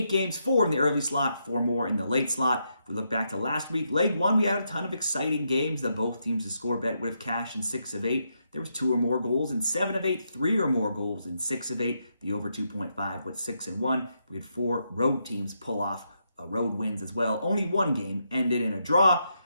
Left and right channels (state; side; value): inverted; both; correlation -0.80